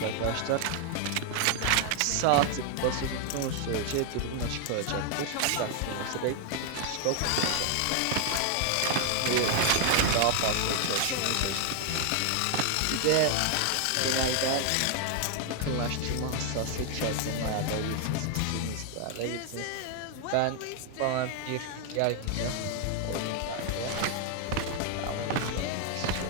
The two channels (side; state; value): both; different; correlation 0.01